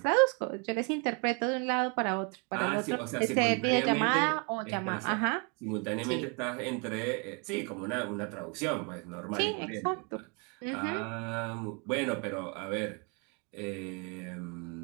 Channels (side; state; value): left; quieter; 34.6 dB